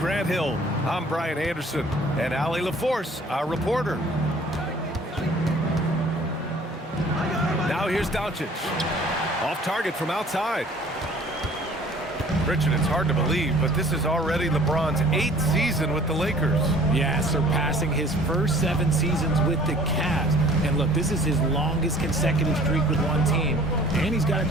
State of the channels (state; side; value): normal; both; correlation 0.52